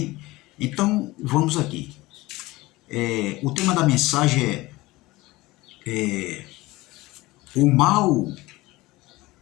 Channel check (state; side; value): quieter; right; 19.9 dB